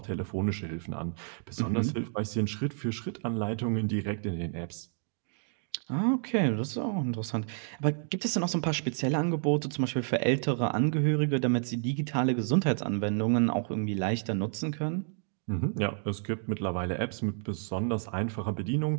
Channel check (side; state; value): left; silent; 58 dB below the other